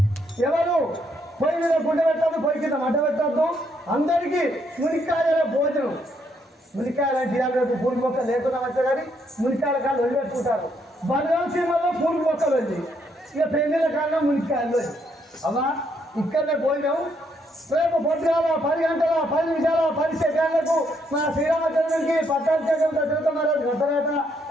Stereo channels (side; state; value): both; normal; correlation 0.73